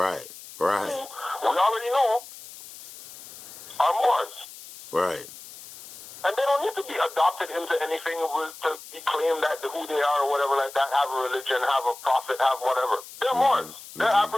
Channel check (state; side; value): noise; left; hiss, 16 dB below the sound